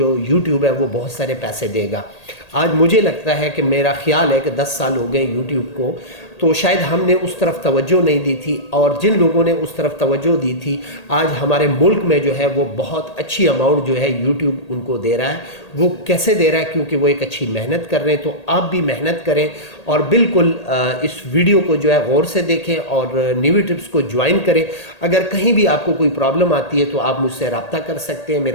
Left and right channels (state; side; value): late; right; 1.8 ms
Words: यूट्यूब है वो बहुत सारे पैसे देगा। आज मुझे लगता है कि मेरा ख्याल है कि 10 साल हो गए यूट्यूब को, तो शायद हमने उस तरफ तवज्जो नहीं दी थी, और जिन लोगों ने उस तरफ तवज्जो दी थी आज हमारे मुल्क में जो है वो बहुत अच्छी अमाउंट जो है यूट्यूब उनको दे रहा है। वो कैसे दे रहा है? क्योंकि वो एक अच्छी मेहनत कर रहे हैं। तो आप भी मेहनत करें और बिल्कुल इस वीडियो को जो है गौर से देखें और न्यूवी ट्रिप्स को ज्वाइन करें। अगर कहीं भी आपको कोई प्रॉब्लम आती है तो आप मुझसे रब्ता कर सकते हैं,